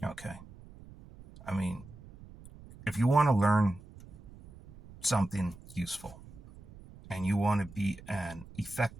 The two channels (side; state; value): right; noise; rumble, 19 dB below the sound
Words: Okay. I mean, if you want to learn something useful and you want to be an